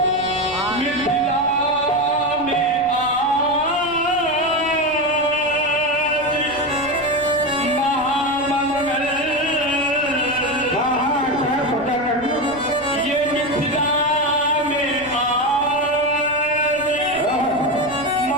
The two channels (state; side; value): noise; right; rumble, 21 dB below the sound